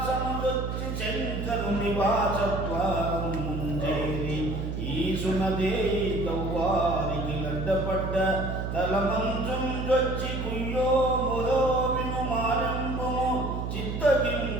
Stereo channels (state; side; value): noise; right; hum, 3 dB below the sound